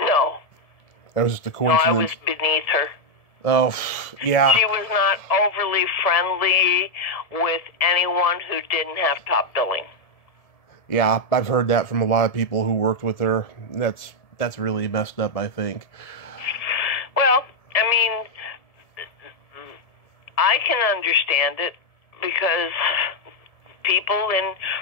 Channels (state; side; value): late; right; 1.7 ms